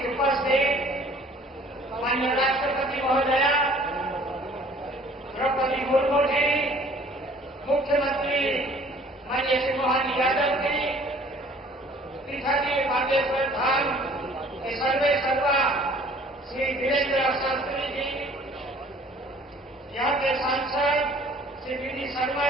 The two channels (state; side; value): normal; both; correlation 0.54